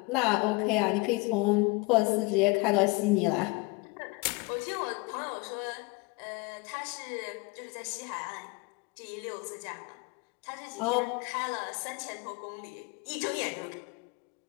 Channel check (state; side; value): quieter; right; 25.8 dB